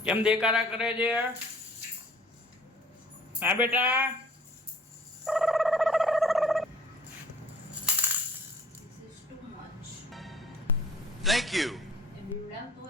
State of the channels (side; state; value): both; normal; correlation 0.52